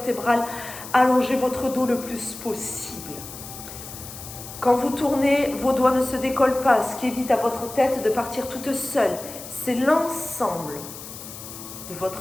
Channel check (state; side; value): noise; left; hiss, 13 dB below the sound